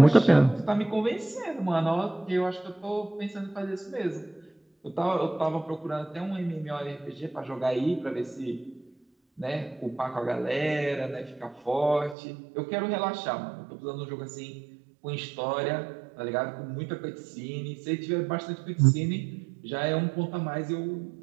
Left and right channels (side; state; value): left; drops out; at 12.2 s